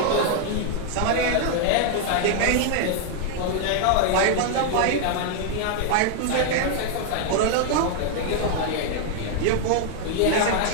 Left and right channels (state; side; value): different; both; correlation 0.00